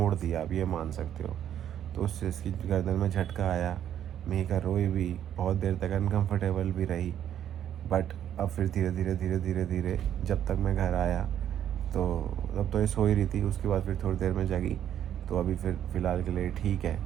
दिया, आप ये मान सकते हो। तो उससे इसकी गर्दन में झटका आया, मेघा रोई भी, बहुत देर तक अनकंफर्टेबल भी रही। बट अब फिर धीरे धीरे धीरे धीरे धीरे जब तक मैं घर आया तो तब तो ये सो ही रही थी, उसके बाद फिर थोड़ी देर में जगी, तो अभी फिर फ़िलहाल के लिए ठीक है।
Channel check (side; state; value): left; quieter; 10.3 dB